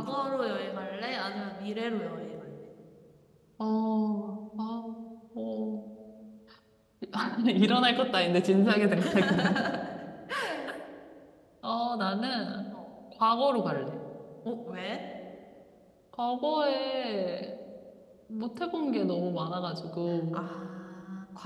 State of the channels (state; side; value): identical; both; correlation 1.00